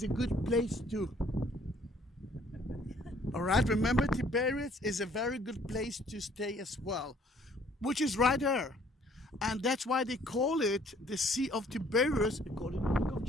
a good place too. All right, remember Tiberias is a very good place to stay as well, which is right there. And that's why they call it the Sea of Tiberias, according to the book of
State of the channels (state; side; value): normal; both; correlation 0.60